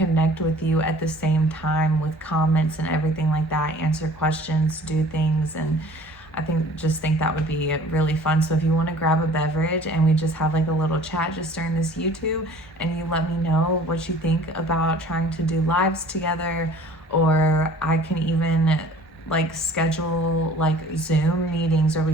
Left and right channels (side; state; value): both; normal; correlation 0.49